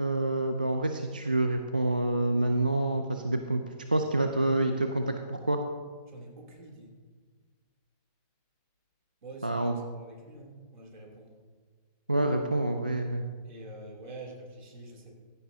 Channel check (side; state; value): both; inverted; correlation -0.82